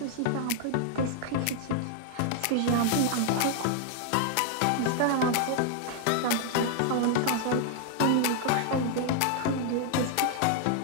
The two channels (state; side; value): different; both; correlation 0.00